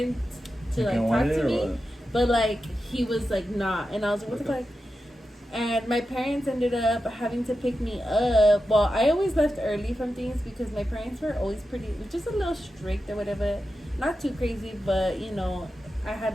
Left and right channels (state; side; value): normal; both; correlation 0.90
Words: to like talk to me, but like he was like not. And I was like, what the fuck? And my parents ended up having to pick me up. Well, I always left early from things because my parents were always pretty, just a little strict or whatever. Not too crazy, but you know, I had